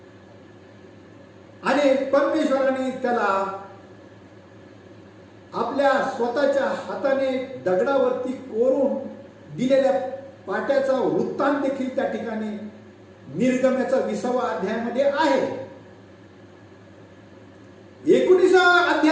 आणि परमेश्वराने त्याला आपल्या स्वतःच्या हाताने दगडावरती कोरून दिलेल्या पाट्याचा वृत्तांत देखील त्या ठिकाणी निर्गमनाचा 20वा अध्यायामध्ये आहे. 19व्या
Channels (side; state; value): both; identical; correlation 1.00